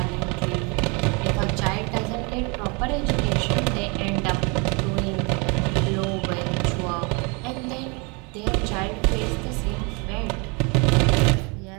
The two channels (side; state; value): left; quieter; 31.0 dB